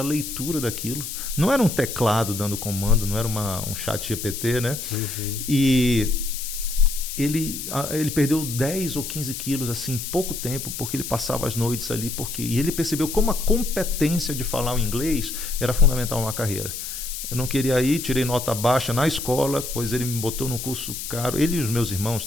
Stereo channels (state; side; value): noise; left; hiss, 7 dB below the sound